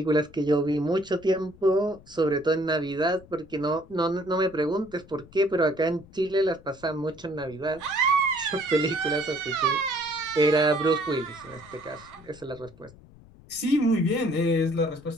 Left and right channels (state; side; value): noise; left; rumble, 23 dB below the sound